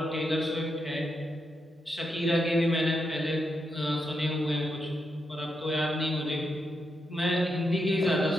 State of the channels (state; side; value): normal; both; correlation 0.84